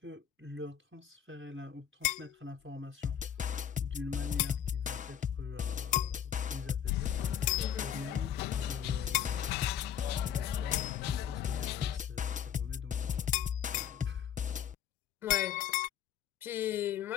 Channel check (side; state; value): right; quieter; 9.3 dB